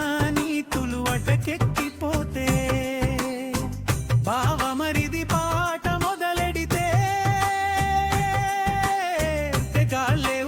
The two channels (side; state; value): both; identical; correlation 1.00